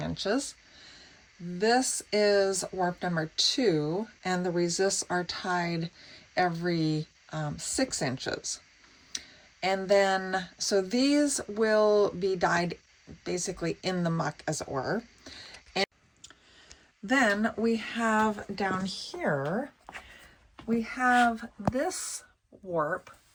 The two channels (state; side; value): identical; both; correlation 1.00